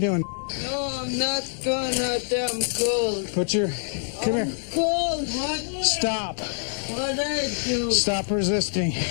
No, I'm not going out there. I'm cold. Put your... Come here. Cold. What? Stop. What I do? Stop resisting.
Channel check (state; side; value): silent; right; 61 dB below the other